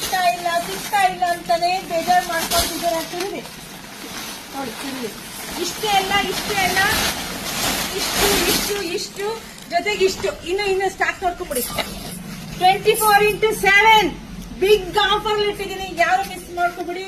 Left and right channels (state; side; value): identical; both; correlation 1.00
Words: ಇಲ್ಲ ಅಂತಾನೆ ಬೇಜಾರು ಮಾಡ್ಕೊಳ್ತಿದ್ದಾರೆ. ನೋಡಿ, ಇಷ್ಟೇ ಅಲ್ಲ, ಇಷ್ಟು ಜೊತೆಗೆ ಇಷ್ಟು ಇನ್ನು ಸ್ಟಾಕ್ ನೋಡ್ಕೊಂಡ್ಬಿಡಿ. 24x7 ಬಿಗ್ ಆಫರ್ ಇಟ್ಟಿದ್ದೀನಿ, ಯಾರು ಮಿಸ್ ಮಾಡ್ಕೊಬಿಡಿ.